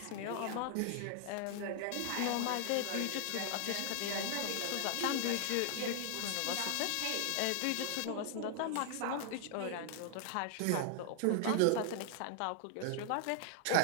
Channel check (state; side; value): different; both; correlation 0.00